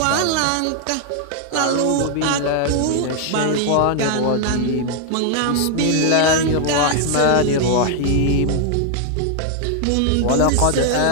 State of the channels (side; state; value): both; different; correlation 0.00